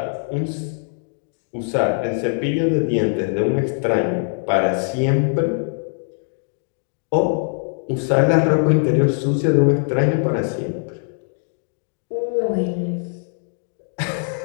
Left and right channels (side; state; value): right; silent; 62 dB below the other